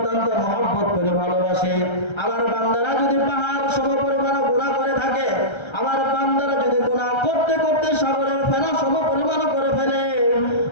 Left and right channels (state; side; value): late; right; 1.3 ms